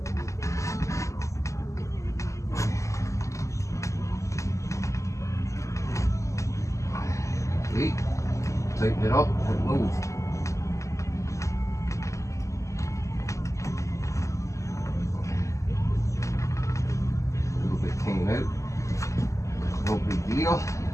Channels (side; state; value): right; late; 0.15 ms